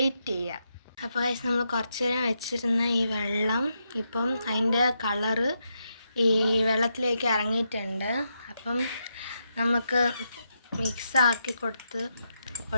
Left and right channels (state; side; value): inverted; both; correlation -0.83